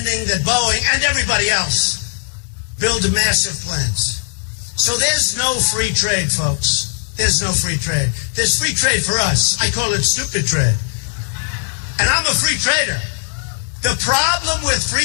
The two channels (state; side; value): silent; right; digital silence